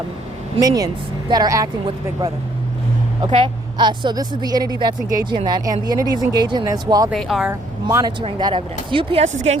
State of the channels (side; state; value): both; normal; correlation 0.65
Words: minions that are acting with the big brother. Okay, so this is the entity that's engaging in that, and the entity is engaging in this while they are monitoring that evidence. UPS is gang